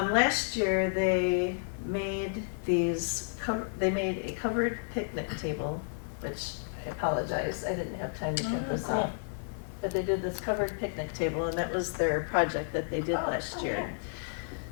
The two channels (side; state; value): right; silent; 57 dB below the other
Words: year they made they made a covered picnic table, which I apologize, I didn't have time to print this out. But they did this covered picnic table, and that was their project that they did last year.